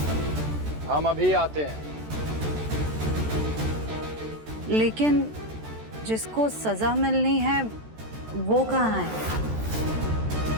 हम अभी आते हैं। लेकिन जिसको सजा मिलनी है वो कहाँ है?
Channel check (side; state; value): left; late; 14 ms